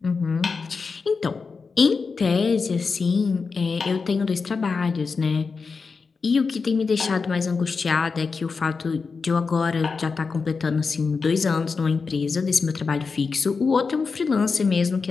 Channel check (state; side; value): quieter; right; 4.8 dB